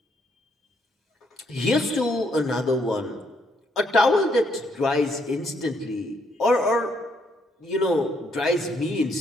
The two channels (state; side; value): normal; both; correlation 0.72